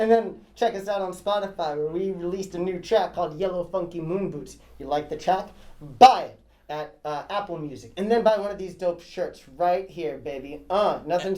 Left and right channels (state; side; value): identical; both; correlation 1.00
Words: then check us out on Spotify where we released a new track called Yellow Funky Moon Boots. You like the track? Buy it at Apple Music, and then buy one of these dope shirts right here, baby. Nothing's And